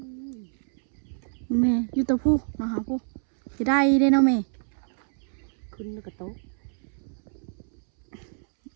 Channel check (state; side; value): silent; left; 60 dB below the other